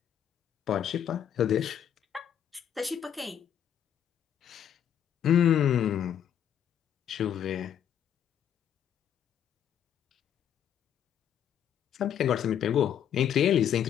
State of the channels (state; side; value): quieter; right; 9.4 dB